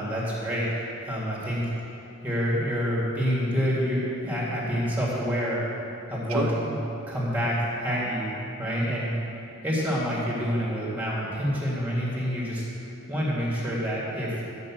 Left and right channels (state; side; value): normal; both; correlation 0.64